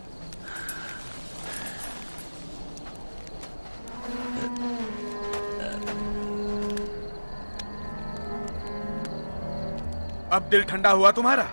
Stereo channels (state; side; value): inverted; both; correlation -1.00